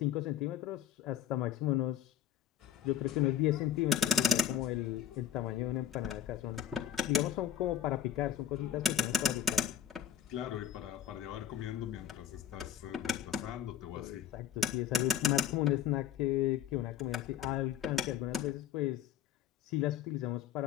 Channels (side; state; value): right; quieter; 9.9 dB